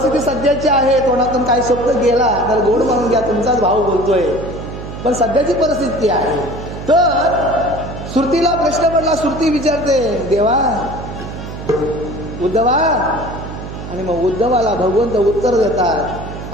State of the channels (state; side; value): noise; right; hum, 10 dB below the sound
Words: सध्याची आहे. तोंडातून काही शब्द गेला तर गोड म्हणून घ्या, तुमचाच भाऊ बोलतोय. पण सध्याची परिस्थिती आहे. तर श्रुतीला प्रश्न पडला. श्रुती विचारते, देवा उद्धवा, आणि मग उद्धवाला भगवंत उत्तर